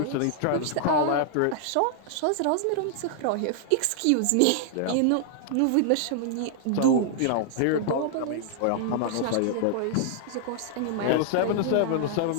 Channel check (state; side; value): different; both; correlation -0.01